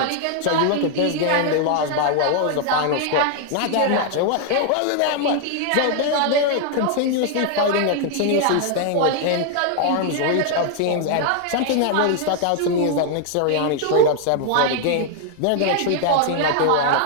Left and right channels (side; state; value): both; different; correlation 0.00